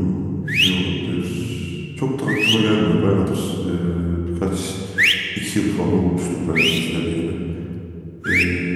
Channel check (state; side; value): identical; both; correlation 1.00